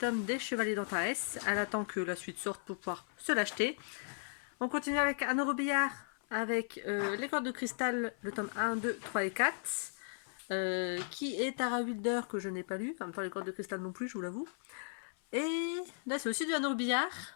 des Chevaliers d'Antares. Elle attend que la suite sorte pour pouvoir se l'acheter. On continue avec Anne Robillard, avec les cordes de cristal, le tome 1, 2, 3 et 4. Qui est Tara Wilder, que je n'ai pas lu. En même temps, les cordes de cristal non plus, je vous l'avoue. Et là, c'est aussi du Anne Robillard,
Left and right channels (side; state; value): right; silent; 54 dB below the other